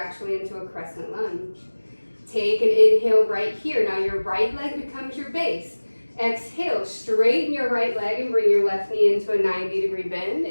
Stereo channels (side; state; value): both; inverted; correlation -1.00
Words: into a crescent lunge. Take an inhale right here. Now your right leg becomes your base. Exhale, straighten your right leg and bring your left knee into a 90-degree bend